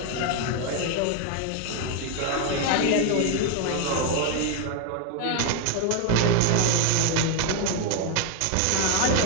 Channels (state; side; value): different; both; correlation 0.01